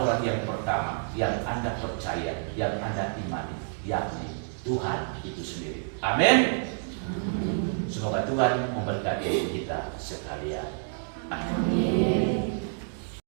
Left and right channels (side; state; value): left; silent; digital silence